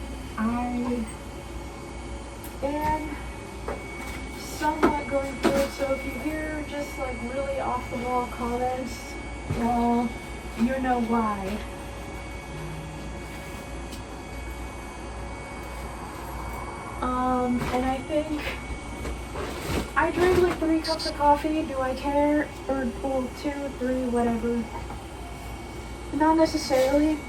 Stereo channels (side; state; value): both; identical; correlation 1.00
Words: I am somewhat going through it. So if you hear just like really off the wall comments, well, you know why. And I think I drink like 3 cups of coffee. Do I care? Or, well, 2, 3, whatever. Not necessarily.